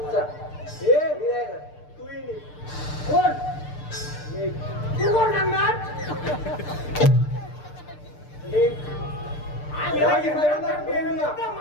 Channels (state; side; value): late; right; 6.7 ms